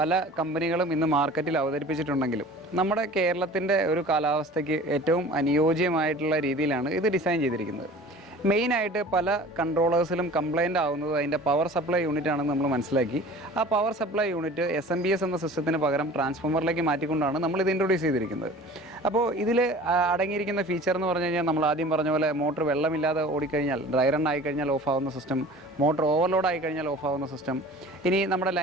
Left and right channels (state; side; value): normal; both; correlation 0.43